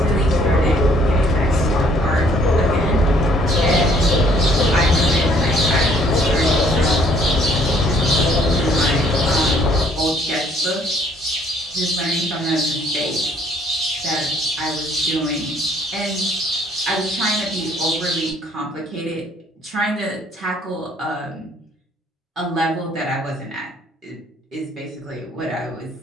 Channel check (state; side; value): normal; both; correlation 0.62